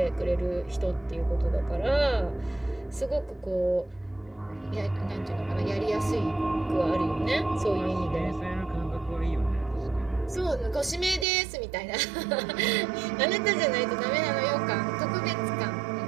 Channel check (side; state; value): left; drops out; at 11.2 s